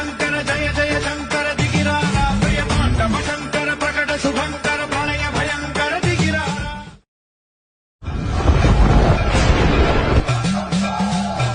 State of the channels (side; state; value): both; identical; correlation 1.00